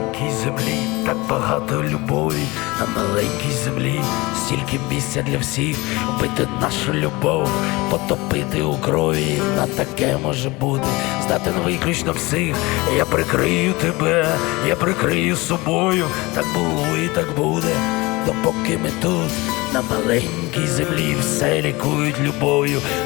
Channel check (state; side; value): quieter; right; 22.9 dB